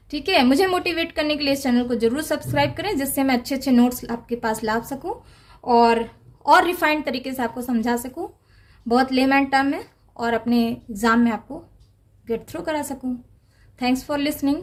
ठीक है। मुझे मोटिवेट करने के लिए इस चैनल को जरूर सब्सक्राइब करें, जिससे मैं अच्छे अच्छे नोट्स आपके पास ला सकूं और रिफाइंड तरीके से आपको समझा सकूं, बहुत लेमैन टर्म में, और अपने एग्जाम में आपको गेट थ्रू करा सकूं। Thanks for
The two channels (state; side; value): identical; both; correlation 1.00